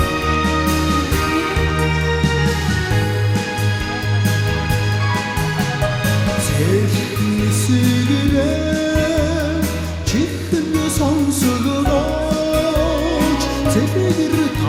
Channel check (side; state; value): both; identical; correlation 1.00